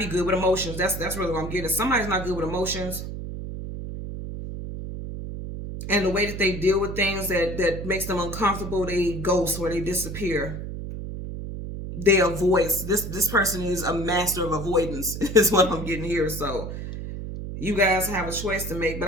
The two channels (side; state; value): right; noise; hum, 7 dB below the sound